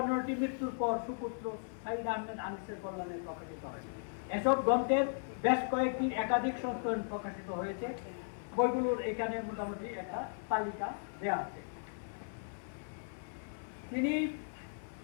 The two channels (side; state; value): right; silent; 53 dB below the other